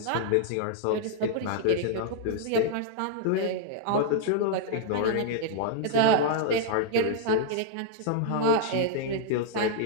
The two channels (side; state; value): both; different; correlation -0.01